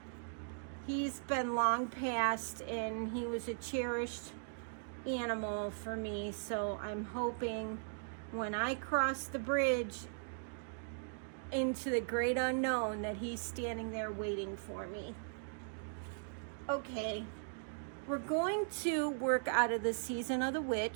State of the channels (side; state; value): left; silent; digital silence